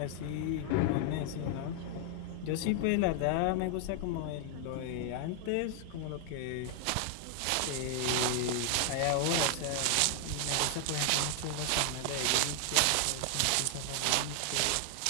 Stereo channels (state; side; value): different; both; correlation 0.00